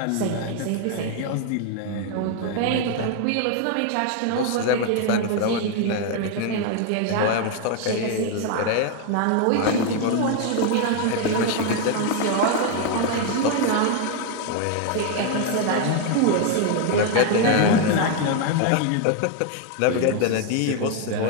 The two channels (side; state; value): both; different; correlation 0.01